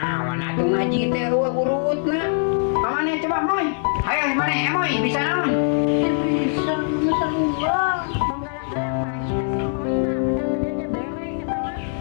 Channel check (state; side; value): silent; right; digital silence